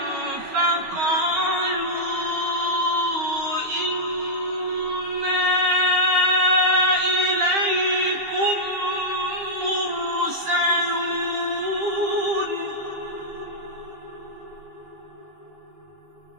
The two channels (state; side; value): late; left; 13 ms